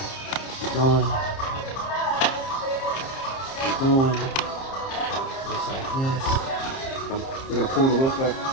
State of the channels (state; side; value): late; right; 30 ms